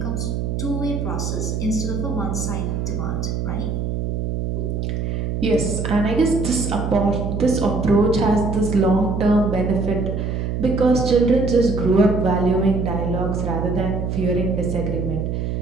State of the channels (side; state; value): right; noise; hum, 2 dB below the sound